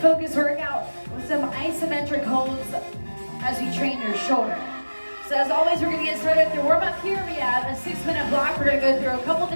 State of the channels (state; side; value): inverted; both; correlation -1.00